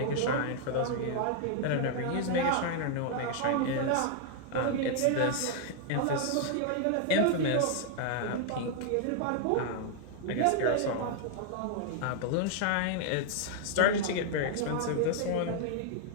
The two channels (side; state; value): both; different; correlation 0.00